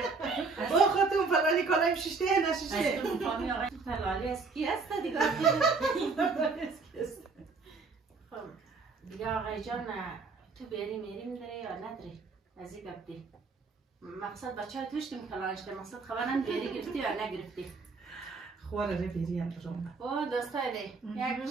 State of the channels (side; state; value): left; quieter; 4.4 dB